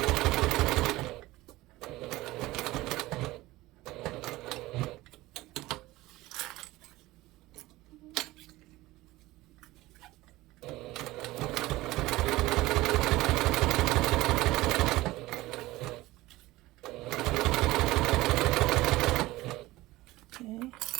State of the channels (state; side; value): quieter; left; 18.5 dB